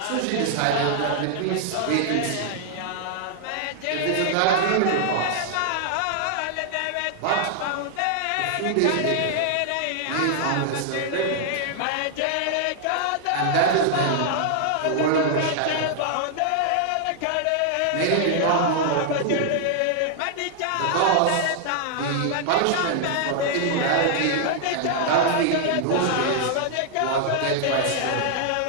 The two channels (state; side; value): different; both; correlation 0.00